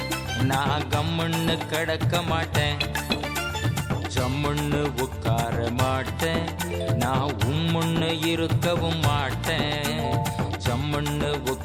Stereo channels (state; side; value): identical; both; correlation 1.00